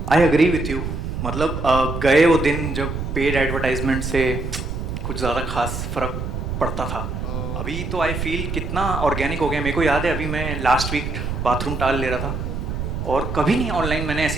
I agree with you. मतलब गए वो दिन जब paid advertisement से कुछ ज़्यादा खास फर्क पड़ता था. अभी तो आई फील कितना ऑर्गेनिक हो गया. मेरे को याद है अभी मैं लास्ट वीक बाथरूम टाल ले रहा था और कभी नहीं ऑनलाइन मैंने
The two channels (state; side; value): noise; right; rumble, 4 dB below the sound